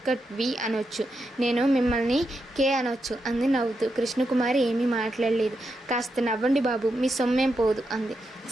కట్ వి అనొచ్చు. నేను మిమ్మల్ని కే అనొచ్చు అంది నవ్వుతూ. కృష్ణకుమారి ఏమీ మాట్లాడలేదు. కాస్త నవ్వండి బాబు మీ సొమ్మేం పోదు అంది.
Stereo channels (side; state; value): both; normal; correlation 0.85